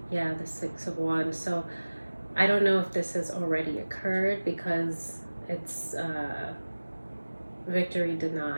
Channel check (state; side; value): inverted; both; correlation -1.00